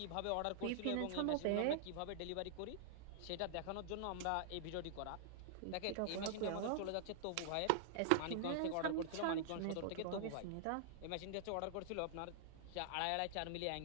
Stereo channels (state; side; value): different; both; correlation -0.01